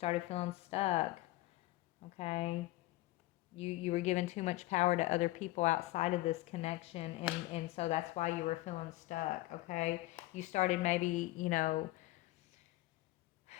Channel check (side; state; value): right; quieter; 18.1 dB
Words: Okay. You were given too much power to other people outside of this connection, and so that's why you were feeling stuck. Okay. You started maybe